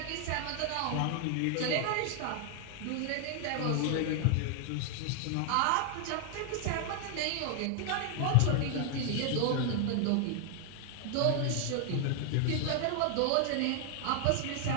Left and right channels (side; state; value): both; different; correlation 0.00